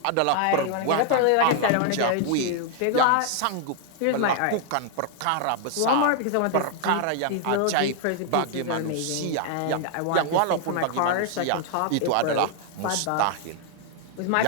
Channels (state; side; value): different; both; correlation 0.00